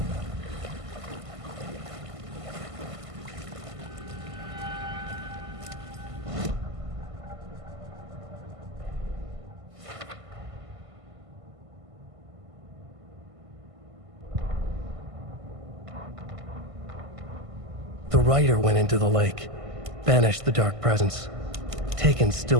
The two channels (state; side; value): late; left; 1.5 ms